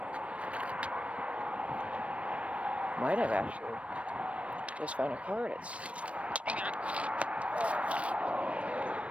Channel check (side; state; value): left; late; 0.063 ms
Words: Might have actually just found a car that's...